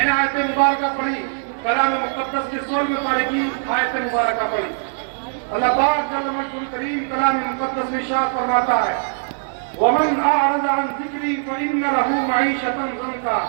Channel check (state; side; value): silent; left; digital silence